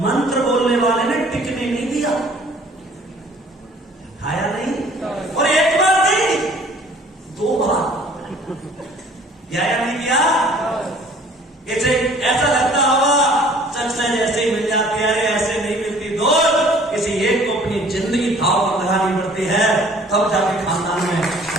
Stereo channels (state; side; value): normal; both; correlation 0.53